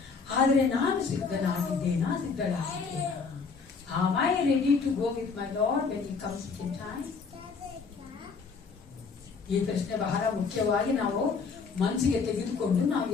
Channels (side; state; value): right; quieter; 5.0 dB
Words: ಆದ್ರೆ ನಾನು ಸಿದ್ಧನಾಗಿದ್ದೇನಾ? Am I ready to go with my Lord when he comes in time? ಈ ಪ್ರಶ್ನೆ ಬಹಳ ಮುಖ್ಯವಾಗಿ ನಾವು ಮನಸ್ಸಿಗೆ ತೆಗೆದುಕೊಂಡು ನಾವು